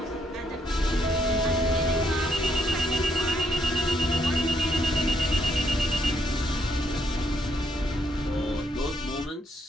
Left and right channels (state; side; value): normal; both; correlation 0.74